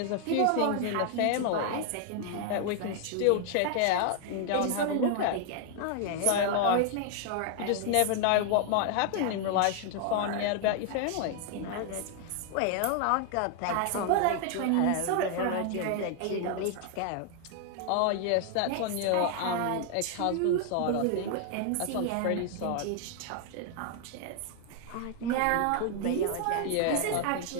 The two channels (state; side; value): different; both; correlation 0.00